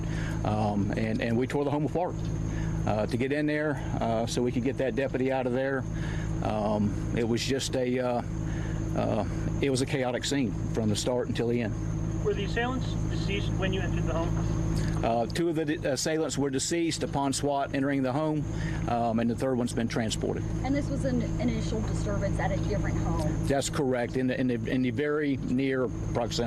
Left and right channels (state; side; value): identical; both; correlation 1.00